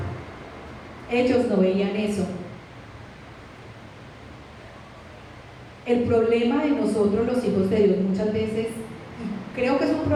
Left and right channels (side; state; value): both; identical; correlation 1.00